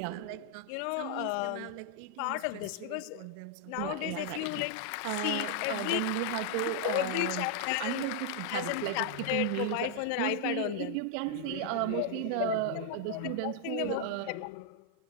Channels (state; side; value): different; both; correlation 0.00